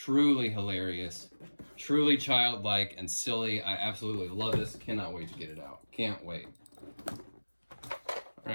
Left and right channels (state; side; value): inverted; both; correlation -1.00